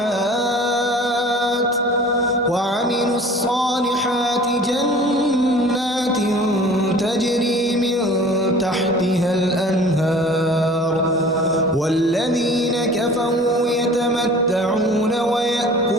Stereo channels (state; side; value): normal; both; correlation 0.45